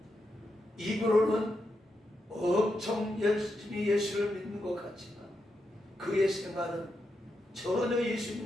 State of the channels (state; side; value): normal; both; correlation 0.85